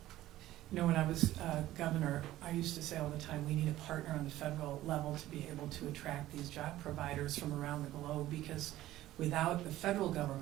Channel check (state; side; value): quieter; left; 14.9 dB